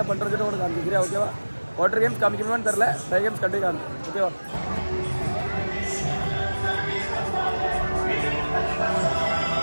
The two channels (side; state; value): both; inverted; correlation -1.00